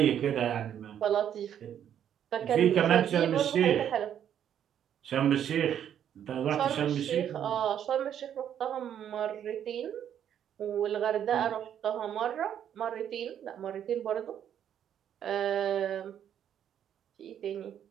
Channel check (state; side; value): quieter; left; 9.6 dB